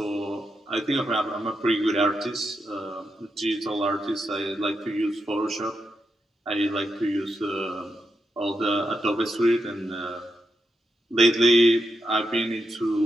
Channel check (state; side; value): normal; both; correlation 0.84